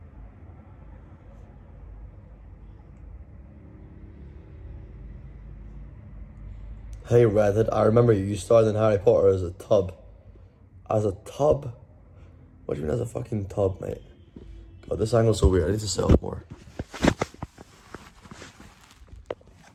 Hey Redhead, I remember you starred in Harry Potter as a tub. As a tub? What do you mean as a fucking tub, mate? God, this angle's so weird. I need to sit up more.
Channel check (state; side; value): identical; both; correlation 1.00